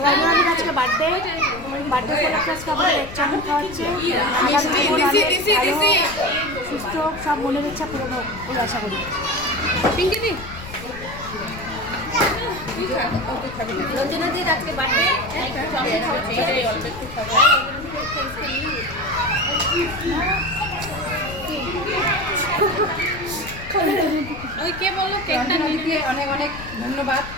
আজকে বার্থডে আজকে আমাদের এক চামচ খাওয়াচ্ছে সুস্থ সব মনের ইচ্ছা পূরণ হোক বলে আশা করি। পিঙ্কিদি রঞ্জনাদির আজকে বার্থডে অল্প একটু খাবো। ওই কে বললো কেকটা নিতে অনেক অনেক ধন্যবাদ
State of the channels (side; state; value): left; noise; rumble, 14 dB below the sound